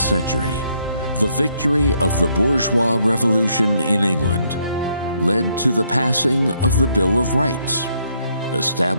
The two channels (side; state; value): both; inverted; correlation -0.72